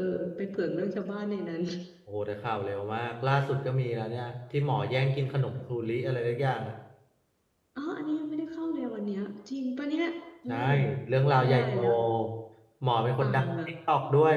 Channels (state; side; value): identical; both; correlation 1.00